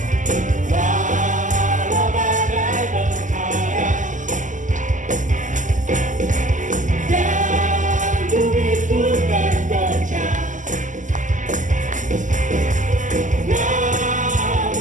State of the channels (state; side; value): late; left; 0.37 ms